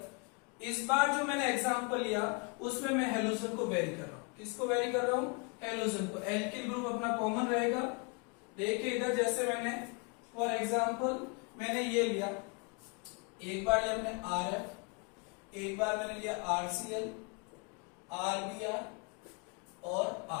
इस बार जो मैंने एग्जांपल लिया उसमें मैं हेलोजन को वेरी कर रहा हूं। किसको वेरी कर रहा हूं, हेलोजन को। एल्किल ग्रुप अपना कॉमन रहेगा। देखिए इधर जैसे मैंने फॉर एग्जांपल मैंने ये लिया, एक बार लिया मैंने RF, एक बार मैंने लिया RCl, RBr और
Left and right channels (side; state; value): right; quieter; 33.4 dB